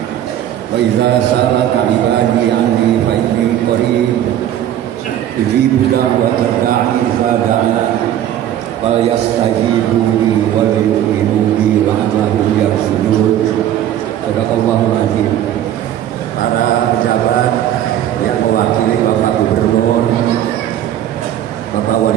Wa idza sa'alaka ibadi anni fa inni qarib ujibu da'watad da'i idza da'an wal yastajibu li wal yu'minu bi la'allahum yarshudun. Sadaqallahul azim. Para pejabat yang mewakili Bapak Gubernur, Bapak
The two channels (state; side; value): quieter; left; 11.4 dB